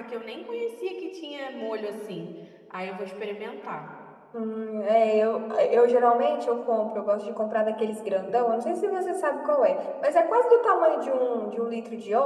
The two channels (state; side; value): identical; both; correlation 1.00